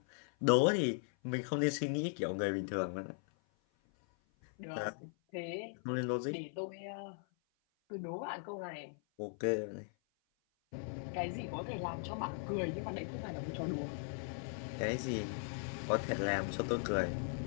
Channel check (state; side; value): silent; right; 52 dB below the other